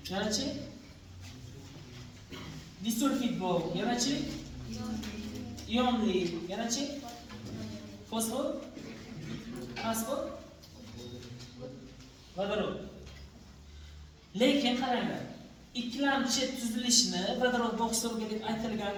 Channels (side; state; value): both; identical; correlation 1.00